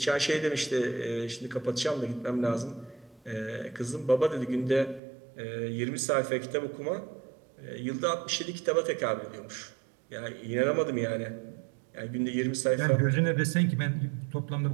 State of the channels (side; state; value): left; drops out; at 5.0 s